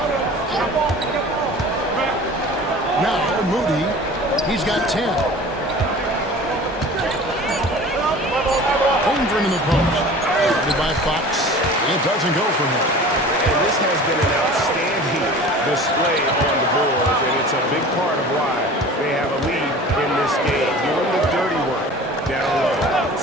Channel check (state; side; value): normal; both; correlation 0.41